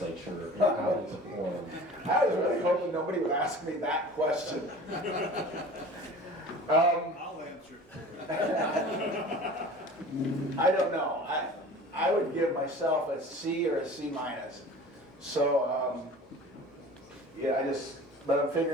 and how they performed? I was really hoping nobody would ask me that question. I'll answer. I don't know. I would give myself a C or a C minus. So, yeah, but I'm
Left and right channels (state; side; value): normal; both; correlation 0.41